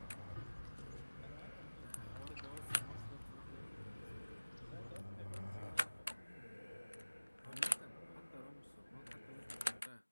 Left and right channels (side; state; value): both; inverted; correlation -1.00